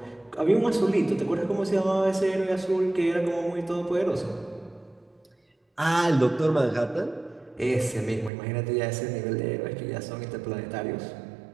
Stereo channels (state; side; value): drops out; left; at 8.3 s